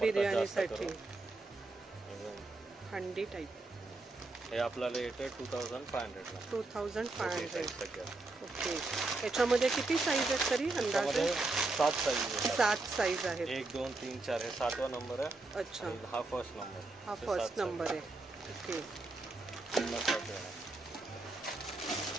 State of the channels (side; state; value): left; quieter; 3.2 dB